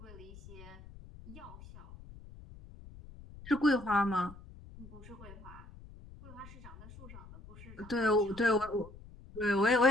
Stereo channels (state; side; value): noise; left; rumble, 18 dB below the sound